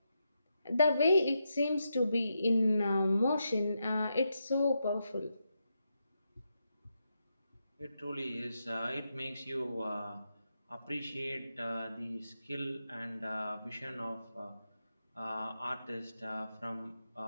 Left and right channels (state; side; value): inverted; both; correlation -0.85